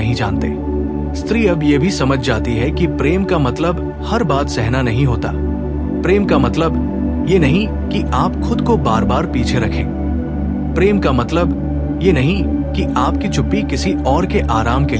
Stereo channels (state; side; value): identical; both; correlation 1.00